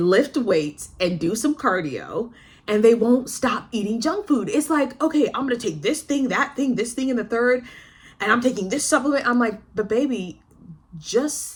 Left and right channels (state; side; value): identical; both; correlation 1.00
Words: lift weights and do some cardio, and they won't stop eating junk food. It's like, okay, I'm going to take this thing, that thing, this thing, and the third, and I'm taking this supplement. I'm like, but baby,